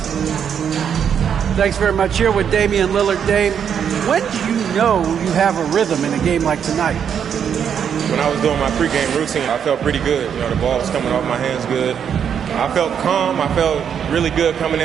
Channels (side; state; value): left; quieter; 8.0 dB